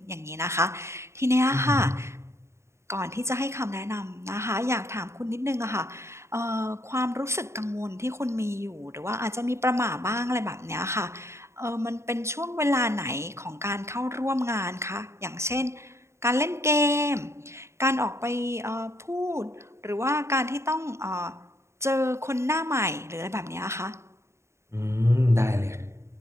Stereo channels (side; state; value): left; late; 0.13 ms